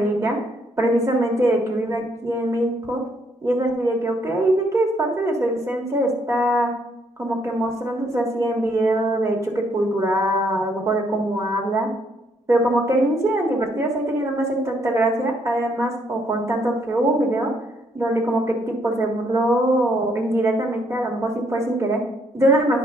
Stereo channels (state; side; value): normal; both; correlation 0.70